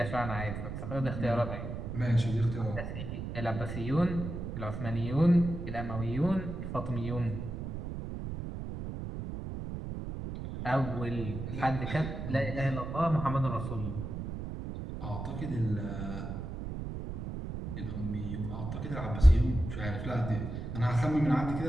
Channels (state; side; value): noise; right; rumble, 6 dB below the sound